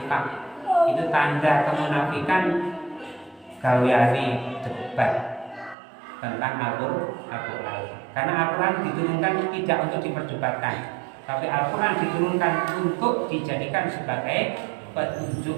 itu tanda kemunafikan gaweane debat tentang Al-Quran. Karena Al-Quran diturunkan tidak untuk diperdebatkan, tapi Al-Quran diturunkan untuk dijadikan sebagai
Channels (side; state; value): left; drops out; at 5.8 s